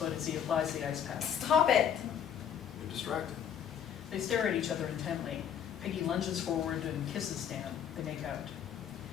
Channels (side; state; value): right; quieter; 8.7 dB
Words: as he applies the ice pack. Stop it. You're distracted. They stare at each other intently. Peggy lunges forward and kisses Stan. They make out.